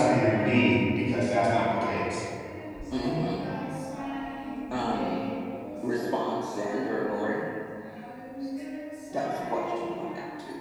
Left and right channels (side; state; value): both; identical; correlation 1.00